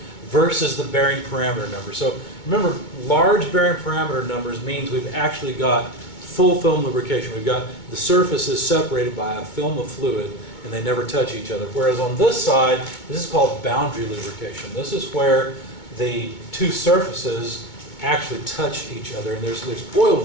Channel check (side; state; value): right; late; 2.2 ms